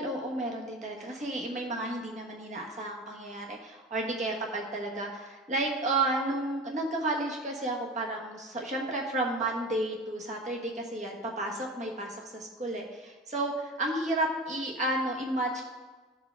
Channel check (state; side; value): normal; both; correlation 0.32